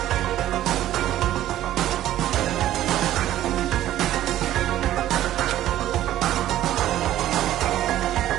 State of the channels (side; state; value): left; quieter; 13.1 dB